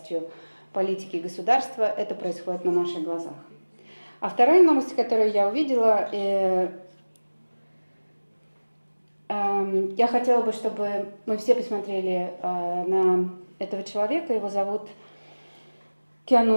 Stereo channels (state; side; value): inverted; both; correlation -1.00